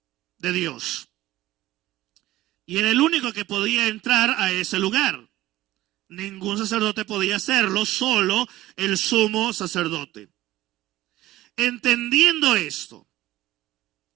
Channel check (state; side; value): quieter; left; 16.2 dB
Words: de Dios. Y era el único que podía entrar a ese lugar. Ningún sacerdote podía hacerlo, solo el sumo sacerdote. Entendiendo esto,